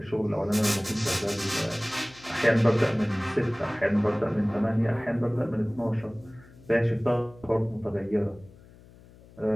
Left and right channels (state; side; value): noise; left; hum, 23 dB below the sound